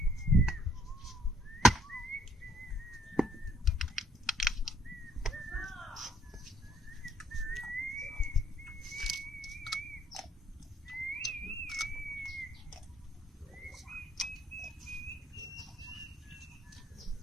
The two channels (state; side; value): normal; both; correlation 0.65